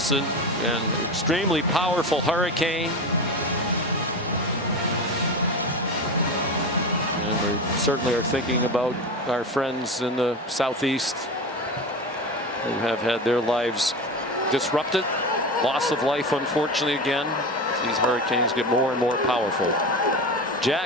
and extremely powerful hurricane. And we certainly are thinking about our friends in the southeast who have had their lives disrupted. Loss of life, unfortunately, again, as these hurricanes get more and more powerful.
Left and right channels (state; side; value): normal; both; correlation 0.25